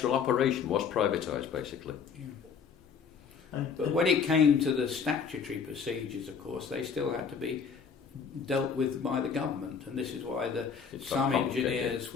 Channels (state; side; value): quieter; right; 6.2 dB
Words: operation was privatised, basically. Yeah. But when it came to the statutory procedures, of course, they still had to be dealt with by the government, and this is why some engineers